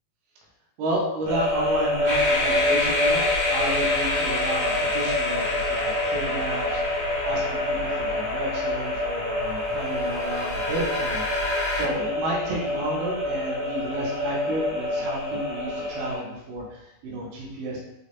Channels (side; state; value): left; late; 19 ms